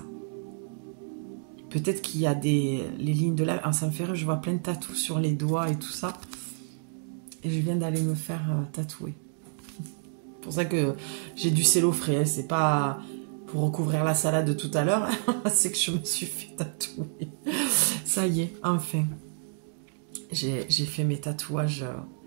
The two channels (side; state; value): left; silent; digital silence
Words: Peut-être qu'il y a les lignes de la... Ah, ça me fait rire, je vois plein de tatous sur les doigts et tout ça. Et je viens d'aller me faire tatouer. C'est pour ça que j'ai du cello frais. C'est pas pour recouvrir la salade de tout à l'heure. C'est que je me suis fait tatouer. Ça y est, enfin. J'ai fait mes tatouages...